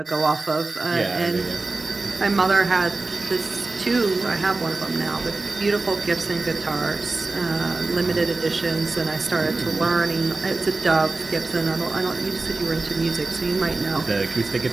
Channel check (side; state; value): left; quieter; 3.4 dB